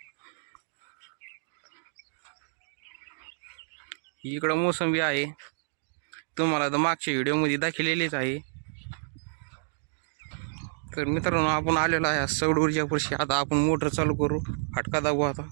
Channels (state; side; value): silent; left; digital silence